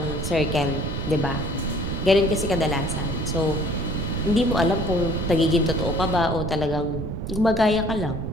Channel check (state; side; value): noise; right; rumble, 5 dB below the sound